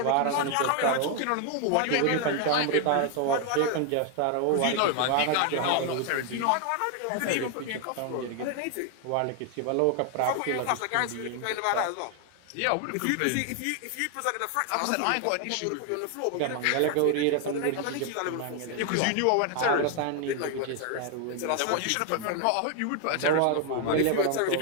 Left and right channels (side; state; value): both; different; correlation 0.00